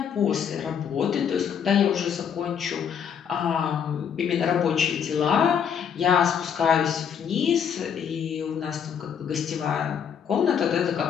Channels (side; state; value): right; quieter; 7.8 dB